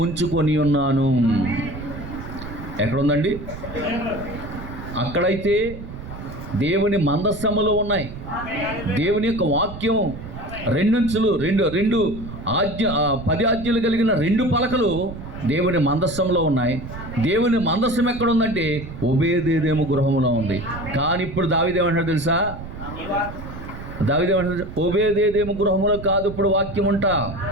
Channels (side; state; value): right; noise; rumble, 11 dB below the sound